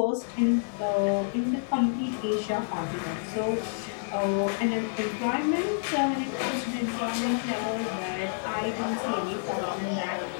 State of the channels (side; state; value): right; silent; digital silence